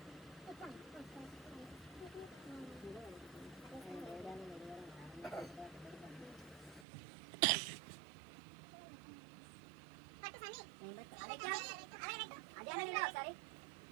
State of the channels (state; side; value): drops out; left; at 6.9 s